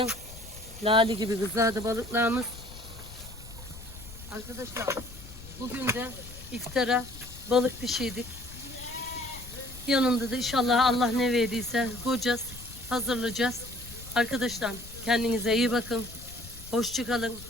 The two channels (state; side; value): noise; left; rumble, 16 dB below the sound